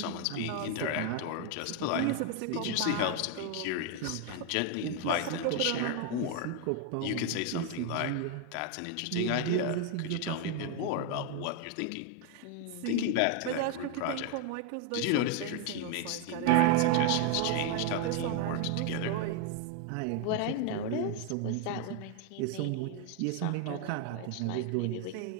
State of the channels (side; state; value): both; different; correlation 0.01